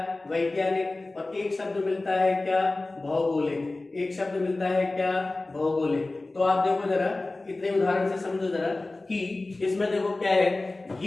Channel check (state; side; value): quieter; right; 3.1 dB